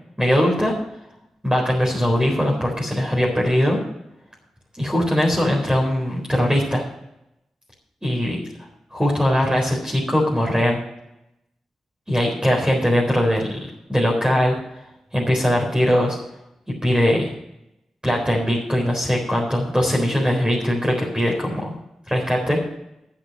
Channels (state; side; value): normal; both; correlation 0.93